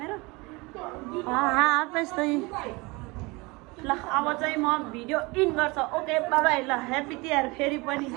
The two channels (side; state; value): left; quieter; 25.1 dB